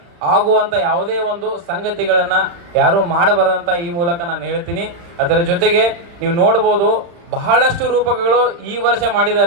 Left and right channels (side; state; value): left; late; 35 ms